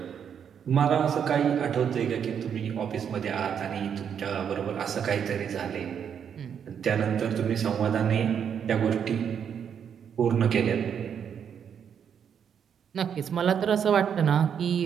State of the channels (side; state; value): left; quieter; 7.9 dB